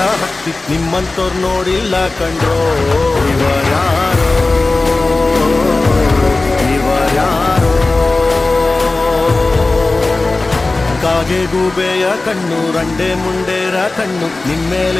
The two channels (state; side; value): quieter; right; 3.3 dB